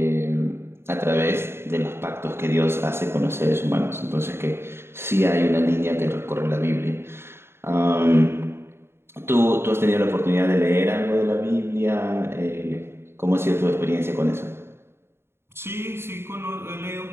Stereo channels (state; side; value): late; left; 0.12 ms